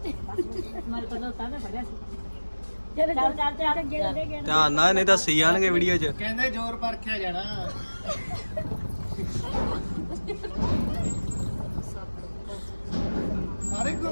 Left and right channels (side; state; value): both; inverted; correlation -1.00